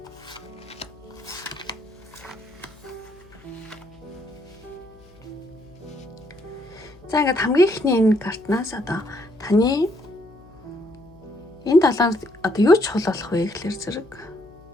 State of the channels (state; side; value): noise; left; hum, 25 dB below the sound